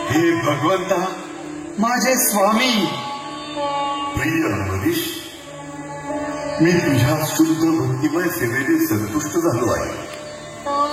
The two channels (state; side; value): identical; both; correlation 1.00